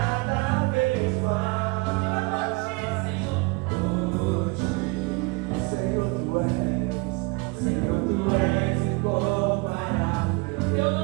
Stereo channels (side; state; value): left; quieter; 26.6 dB